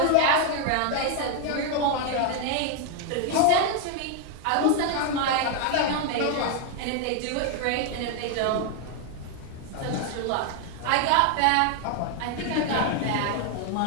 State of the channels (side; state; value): both; different; correlation 0.01